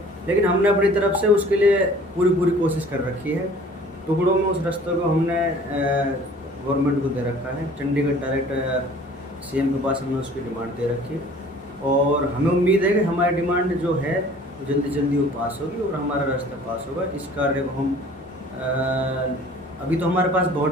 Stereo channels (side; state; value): both; normal; correlation 0.50